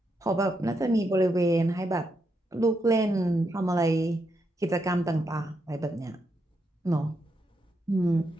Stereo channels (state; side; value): normal; both; correlation 0.81